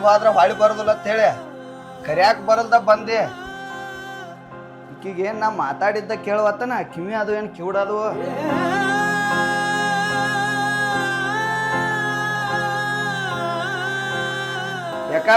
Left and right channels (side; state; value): both; identical; correlation 1.00